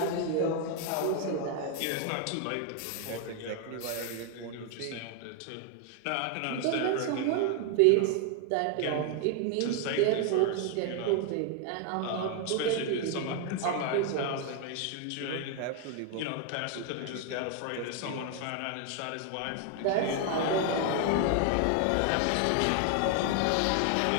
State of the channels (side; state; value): both; different; correlation 0.01